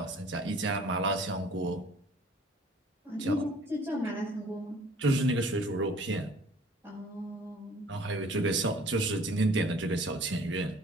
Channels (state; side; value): normal; both; correlation 0.52